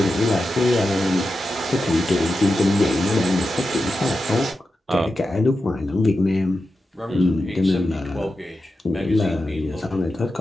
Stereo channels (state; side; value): normal; both; correlation 0.90